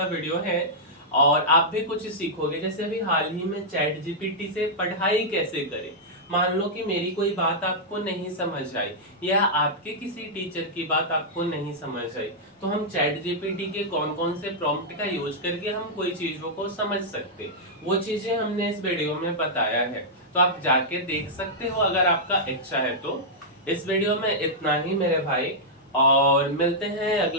वीडियो है, और आप भी कुछ सीखोगे। जैसे अभी हाल ही में चैट जीपीटी से पढ़ाई कैसे करें। मान लो कि मेरी कोई बात आपको नहीं समझ आई, या आपके किसी टीचर की बात आपको नहीं समझ आई, तो हम चैट जीपीटी के कौन कौन से प्रॉम्प्ट का यूज करके हम कोई चीजों को समझ सकते, वो चीजें हमने इस वीडियो में बताया है। तो आप जाके देख सकते हो अगर आपका इच्छा है तो। इस वीडियो में इतना ही मेरे भाई, और मिलते हैं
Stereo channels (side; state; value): both; normal; correlation -0.08